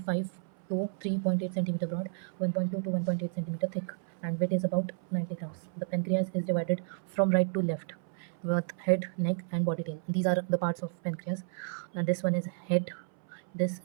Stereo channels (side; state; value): left; silent; 57 dB below the other